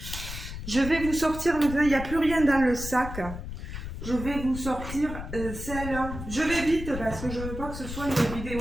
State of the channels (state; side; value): noise; left; rumble, 8 dB below the sound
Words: Je vais vous sortir maintenant, il n'y a plus rien dans le sac. Je vais vous sortir celle. Je vais vite parce que je ne veux pas que ce soit une